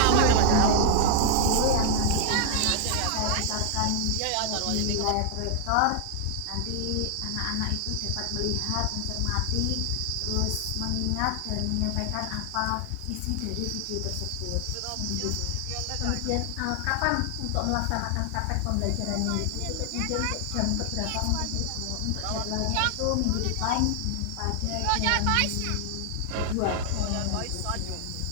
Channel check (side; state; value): both; different; correlation 0.00